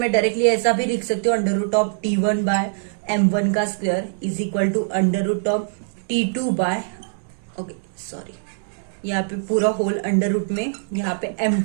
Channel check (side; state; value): left; silent; digital silence